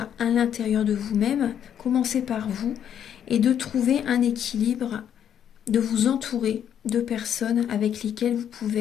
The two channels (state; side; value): quieter; right; 9.2 dB